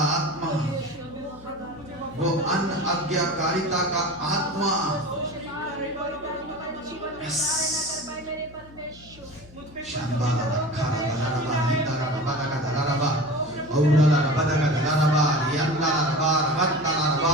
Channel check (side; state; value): left; noise; hum, 22 dB below the sound